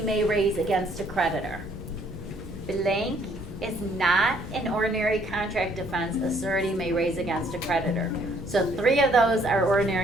may raise against a creditor. Blank is not an ordinary contract defense a surety may raise against a creditor. So 3 of those are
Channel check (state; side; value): normal; both; correlation 0.64